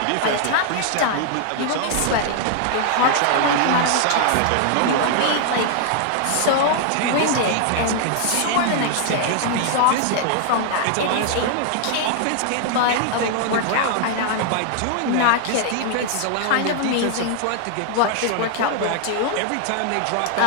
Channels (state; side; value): different; both; correlation 0.00